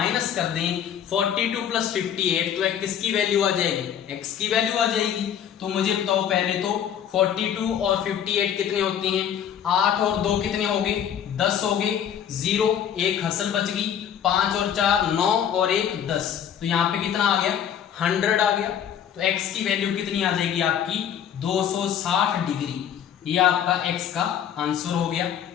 कर दें 42 प्लस 58 तो किसकी वैल्यू आ जाएगी? x की वैल्यू आ जाएगी। तो मुझे बताओ पहले तो 42 और 58 कितने होती हैं? 8 और 2 कितने हो गए? 10 हो गए, 0 एक हसल बच गई, 5 और 4 9 और 1 10। तो यहाँ पे कितना आ गया? 100 आ गया। तो x की वैल्यू कितनी आ जाएगी आपकी? 260 डिग्री। ये आपका x का आंसर हो गया।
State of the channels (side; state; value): right; quieter; 9.2 dB